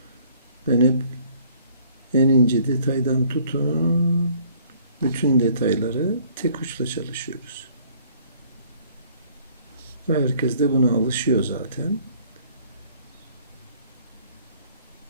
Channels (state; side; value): inverted; both; correlation -0.59